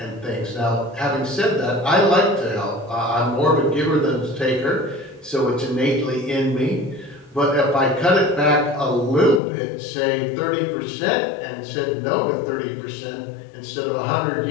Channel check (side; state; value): right; drops out; at 9.4 s